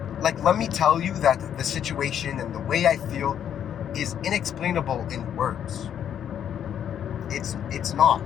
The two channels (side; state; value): right; quieter; 9.3 dB